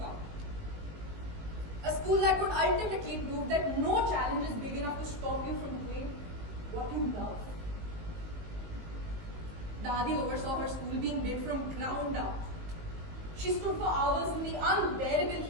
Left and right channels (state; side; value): late; left; 19 ms